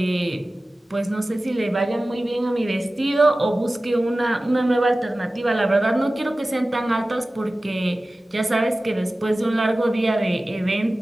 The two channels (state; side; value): normal; both; correlation 0.96